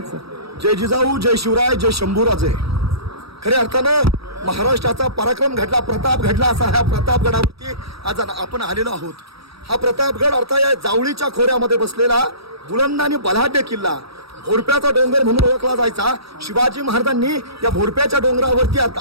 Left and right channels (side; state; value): left; late; 0.77 ms